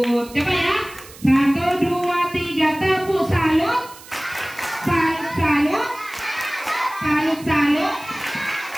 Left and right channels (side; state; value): right; noise; hiss, 19 dB below the sound